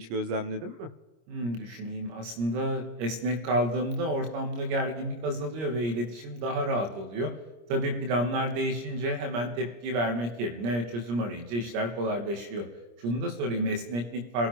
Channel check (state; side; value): late; left; 25 ms